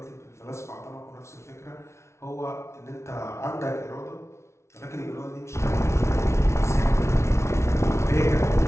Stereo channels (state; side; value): late; right; 0.13 ms